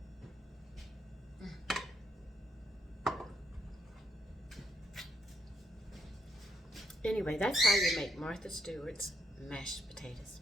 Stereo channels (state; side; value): normal; both; correlation 0.76